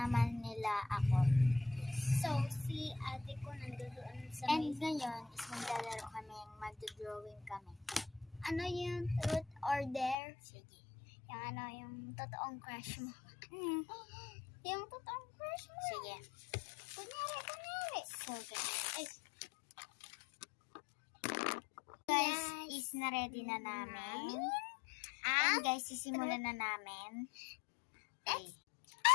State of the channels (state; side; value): drops out; right; at 10.2 s